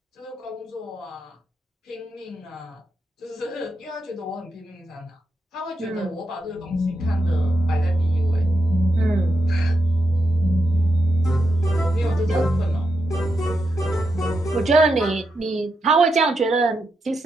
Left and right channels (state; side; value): normal; both; correlation 0.85